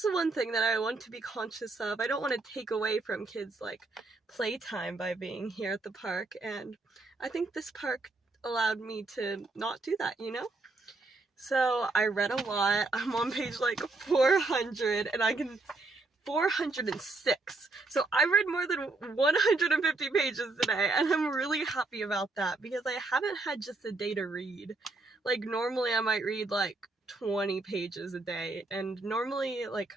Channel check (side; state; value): left; quieter; 3.4 dB